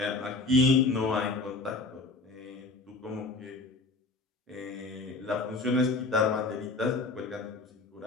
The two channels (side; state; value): right; quieter; 3.4 dB